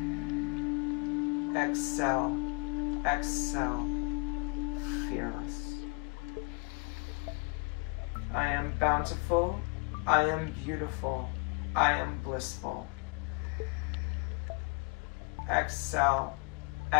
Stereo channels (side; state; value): right; quieter; 30.8 dB